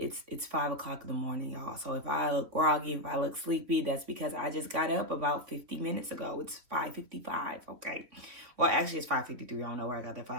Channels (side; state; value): left; late; 3.5 ms